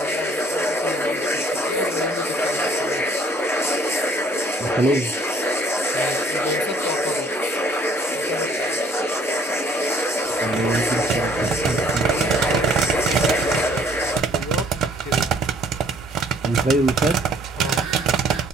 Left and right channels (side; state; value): both; normal; correlation 0.60